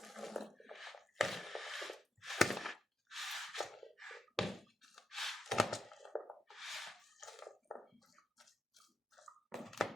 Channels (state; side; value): normal; both; correlation 0.84